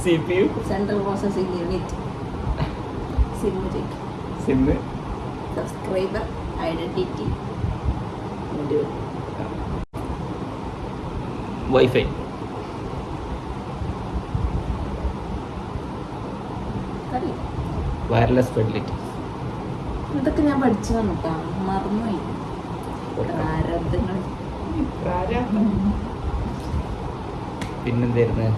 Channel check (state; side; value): identical; both; correlation 1.00